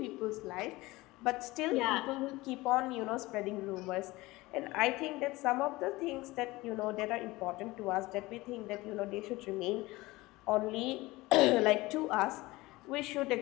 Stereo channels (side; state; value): right; quieter; 20.3 dB